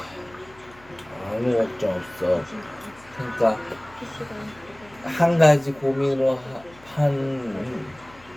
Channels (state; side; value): noise; left; hum, 25 dB below the sound